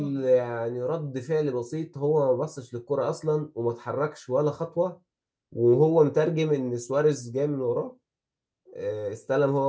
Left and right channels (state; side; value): identical; both; correlation 1.00